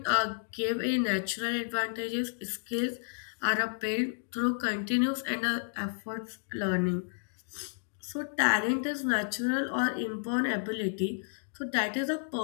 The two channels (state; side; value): silent; right; digital silence